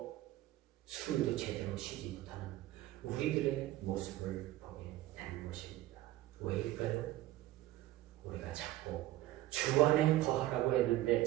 숨도 제대로 쉬지 못하는 우리들의 모습을 보게 되는 것입니다. 왜일까요? 우리가 자꾸 주 안에 거하라고 했는데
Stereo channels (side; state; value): left; quieter; 15.7 dB